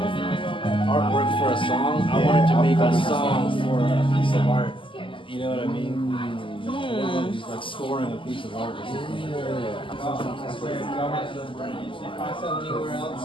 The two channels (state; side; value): late; right; 0.25 ms